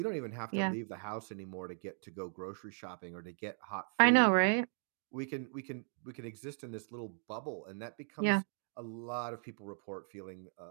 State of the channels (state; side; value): silent; left; 53 dB below the other